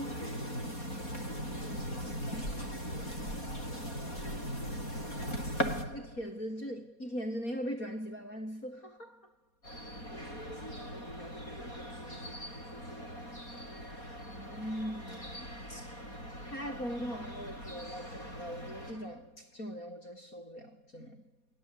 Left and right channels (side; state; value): right; late; 4.2 ms